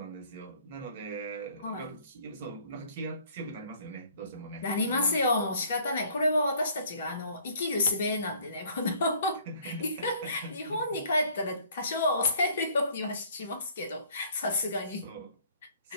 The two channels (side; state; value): both; inverted; correlation -0.57